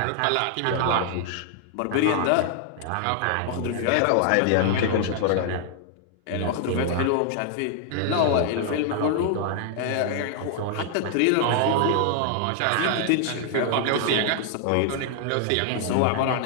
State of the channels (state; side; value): different; both; correlation 0.00